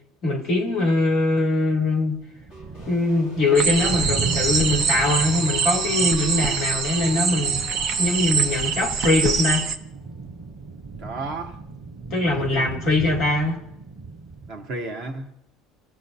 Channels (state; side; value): normal; both; correlation 0.58